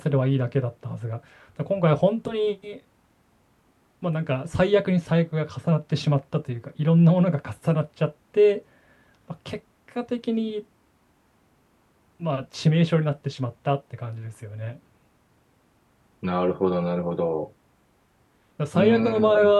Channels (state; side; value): identical; both; correlation 1.00